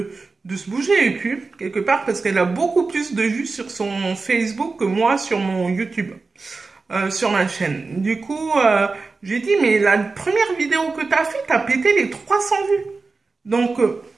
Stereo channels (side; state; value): left; quieter; 4.0 dB